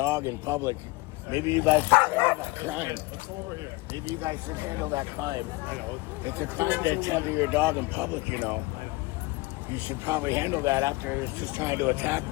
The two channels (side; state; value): right; quieter; 22.7 dB